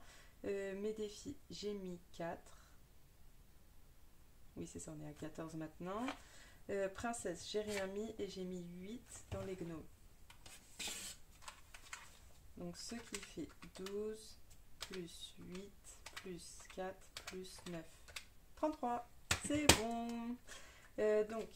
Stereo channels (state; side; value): identical; both; correlation 1.00